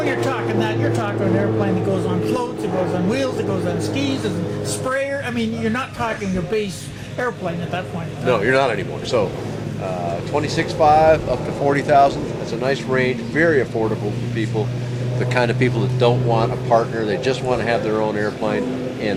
you're talking that, you're talking an airplane that goes on floats, it goes on wheels, it goes on skis, and sprayer. I mean, you're not talking a base airplane at that point. No, you're not anymore. So, $26,500 up to $40,000. That's a nice range, very affordable for people. The kind of people that don't want a partner, they just want to have their own airplane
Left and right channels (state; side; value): identical; both; correlation 1.00